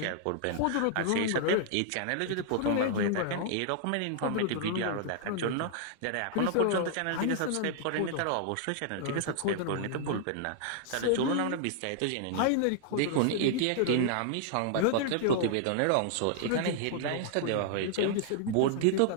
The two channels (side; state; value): both; different; correlation -0.01